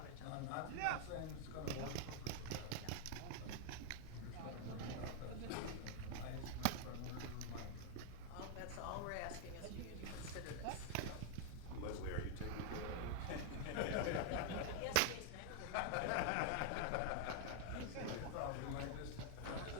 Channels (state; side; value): different; both; correlation 0.00